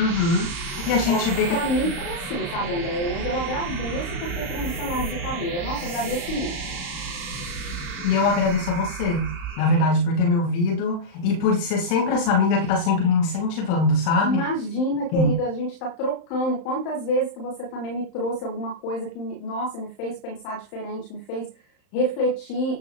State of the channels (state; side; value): late; right; 35 ms